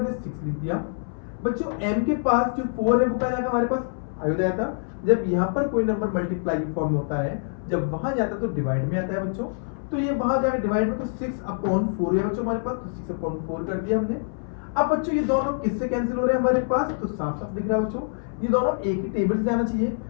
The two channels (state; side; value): silent; right; 61 dB below the other